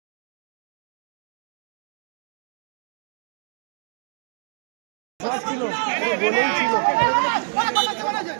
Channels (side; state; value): left; silent; digital silence